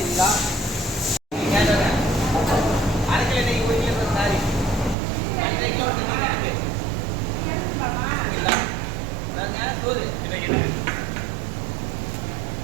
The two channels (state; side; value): drops out; left; at 5.0 s